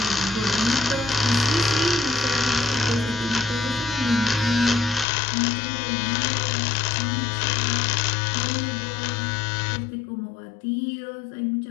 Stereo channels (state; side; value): drops out; right; at 5.1 s